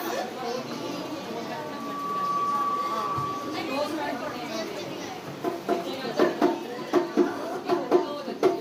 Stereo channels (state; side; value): identical; both; correlation 1.00